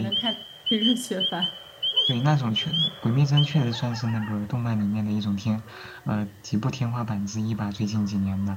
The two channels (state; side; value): identical; both; correlation 1.00